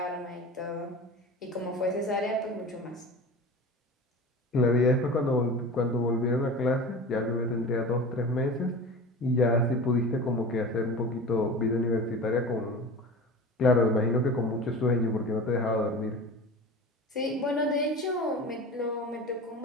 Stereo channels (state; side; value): normal; both; correlation 0.33